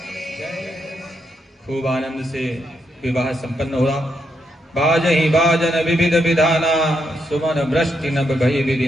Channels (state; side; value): normal; both; correlation 0.80